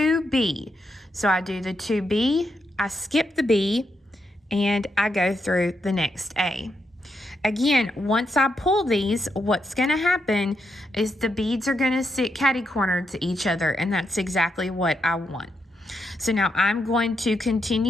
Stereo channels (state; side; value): normal; both; correlation 0.81